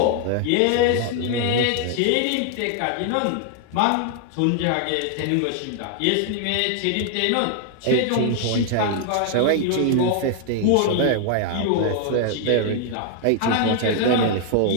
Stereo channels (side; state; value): both; different; correlation 0.00